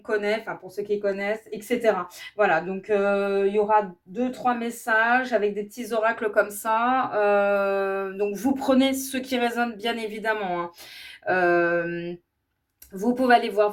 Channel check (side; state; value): both; identical; correlation 1.00